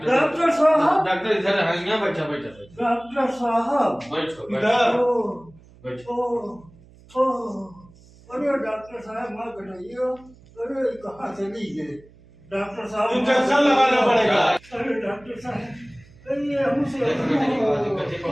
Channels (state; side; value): noise; right; hum, 25 dB below the sound